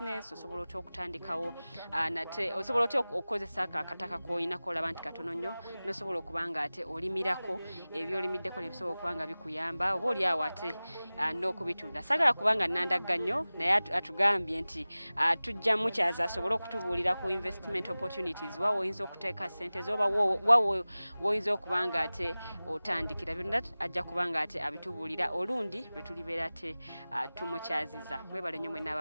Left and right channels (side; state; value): both; inverted; correlation -0.98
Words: osobola otya okutandikawo nate osobola otya okukozesa akataka k'oyinako olaba nti katono nnyo n'osobola okuba nga ate olimirako ebyolimiddeko ne bisobola okuba nga bikuyamba oba oli awo ate n'okubitunda. Saagala kubanga nnandagga nnyo naye atugambye nti tujja mukyaza asobole okutubuulira ku investment opportunities wa woyinza okuteeka ssente zo oba woyinza okuba nga ate otandikira byonna ajja kuba nga ate abitubuulira olundi lwe tulibeera ate tumukyaziza. Mwebale nnyo mwenna